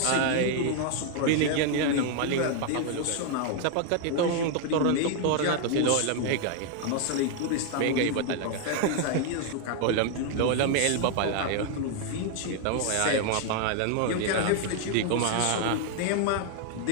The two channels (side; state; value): both; different; correlation 0.00